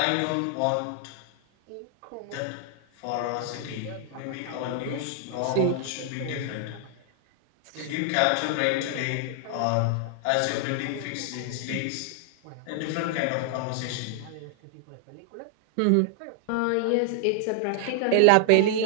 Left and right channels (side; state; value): both; different; correlation 0.00